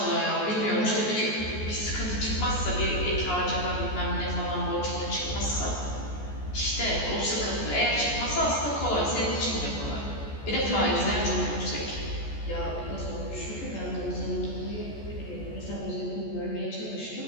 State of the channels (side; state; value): right; late; 14 ms